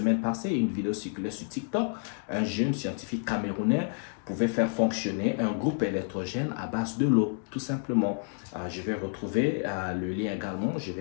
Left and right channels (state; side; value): silent; right; 58 dB below the other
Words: passée, une vidéo circulait sur TikTok. Un jeune scientifique camerounais pouvait faire fonctionner un groupe électrogène à base de l'eau, tout simplement. Je vais retrouver le lien également, je